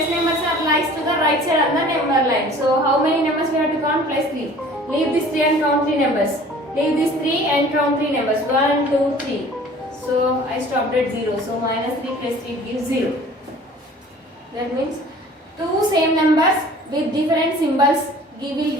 numbers are lies to the right side on the number line. So how many numbers we have to count? +3. Leave this 3 and count 3 numbers. Leave this 3 and count 3 numbers. 1, 2, 3. So I stopped at 0. So -3 plus 3 gives 0. That means two same numbers with different symbols will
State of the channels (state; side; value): normal; both; correlation 0.48